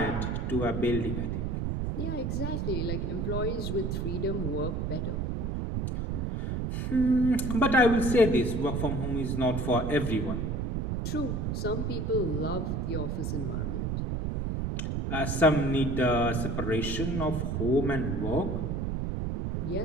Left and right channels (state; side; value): noise; right; rumble, 1 dB below the sound